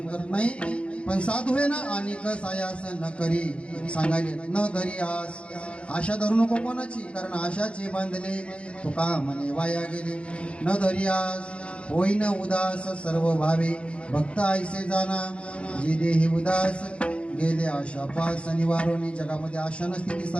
करत नाही. पण साधू आहे ना अनेक सायास न करी सांगायले न धरी आस. आशा धरू नको कोणाची कारण आशाचे बांधले तुका म्हणे वाया गेले. न धरी आस होईन उदास सर्व भावे. भक्त ऐसे जाना जी देही उदास गेले आशा पास निवारोनी. जगामध्ये आशा नसते ती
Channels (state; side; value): late; right; 0.060 ms